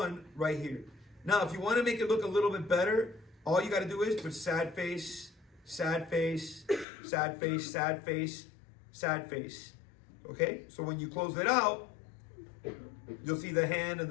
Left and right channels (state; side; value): drops out; right; at 6.9 s